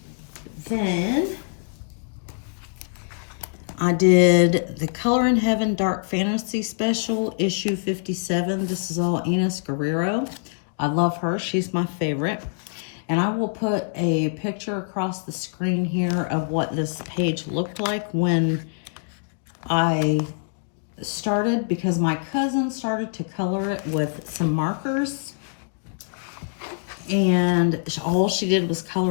Then I did the Color in Heaven Dark Fantasy Special, issue 57. This is all Enys Guerrero. I love her. She's my favorite. And I will put a picture across the screen here of what this page looked like when I started, because my cousin started to color it with some markers. And all she did was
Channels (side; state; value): right; silent; digital silence